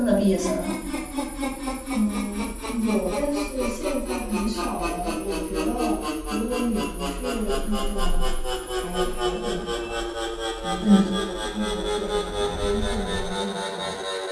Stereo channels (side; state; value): both; identical; correlation 1.00